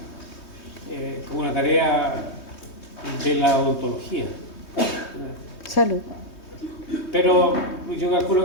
tarea de la odontología. Salud. Pero yo calculo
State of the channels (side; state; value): right; late; 3.2 ms